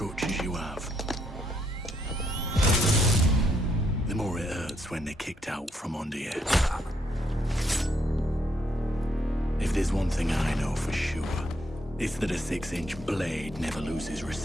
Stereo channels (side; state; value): both; normal; correlation 0.74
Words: you have, the more it hurts when they're kicked out from under you. If there's one thing I know for sure, it's that a 6-inch blade never loses